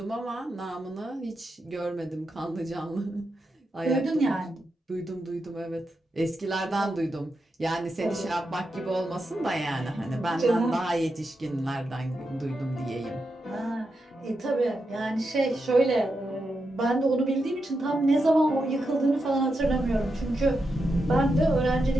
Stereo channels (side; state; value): both; normal; correlation 0.86